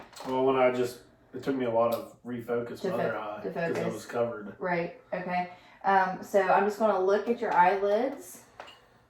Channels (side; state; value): both; identical; correlation 1.00